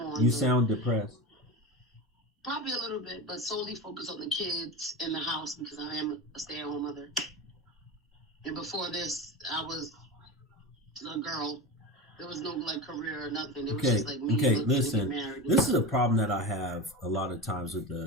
You sound depressed. Probably a little bit, but solely focus on the kids in the house because I am a stay-at-home mother. And before this, I was a girl. There was no like career or nothing. It was just like me. Okay, listen. This is a problem that I have a lot of times with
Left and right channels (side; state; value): both; normal; correlation 0.24